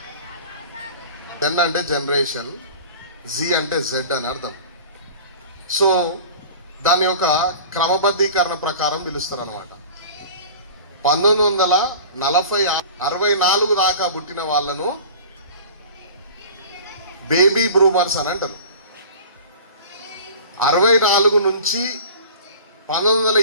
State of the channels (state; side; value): inverted; both; correlation -0.40